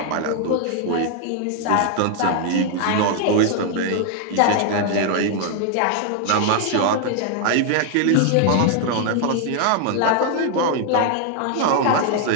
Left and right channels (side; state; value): both; different; correlation 0.00